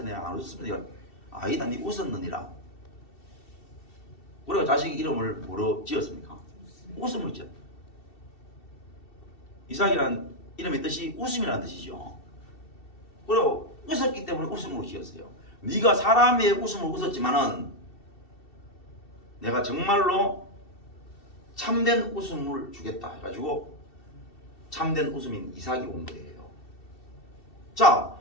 내가 안 웃었습니다. 아니다 네 웃었느니라. 그래가 자식 이름을 뭐로 지었습니까? 웃음으로 지었다. 이삭이란 이름의 뜻이 웃음이라는 뜻이죠. 그리고 웃었기 때문에 웃음으로 지었어요. 네가 사람의 웃음을 웃었지만은 내가 정말로 참된 웃음을 주겠다 해가지고 참된 웃음인 이삭이 온 거예요. 자,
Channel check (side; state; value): right; late; 2.7 ms